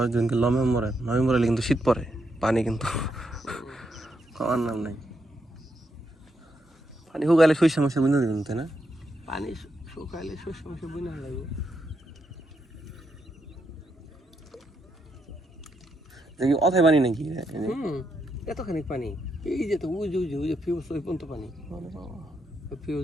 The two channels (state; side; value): normal; both; correlation 0.80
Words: দিনকে নভেম্বরে কিন্তু শীত পড়ে পানি কিন্তু খাওয়ার নাম নাই পানি শুকাইলে শস্য মাসে বুঝে দেবেন তাই না পানি শুকাইলে শস্য মাসে বুঝে লাগবে দেখি অথায় পানি নাকি এতখানি পানি এই যে তো ওই যে ফিউজ ওই পর্যন্ত পানি